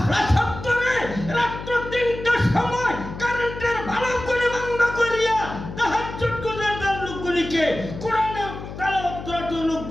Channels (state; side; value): noise; left; hum, 10 dB below the sound